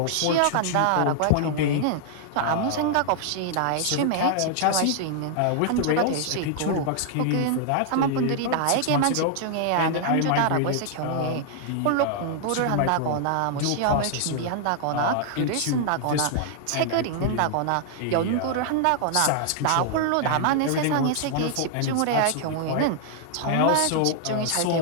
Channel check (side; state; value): both; different; correlation 0.00